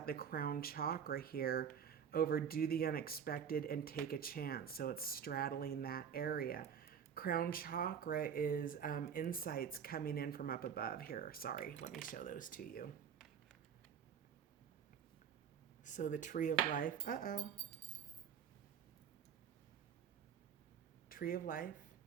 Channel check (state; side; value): quieter; left; 7.8 dB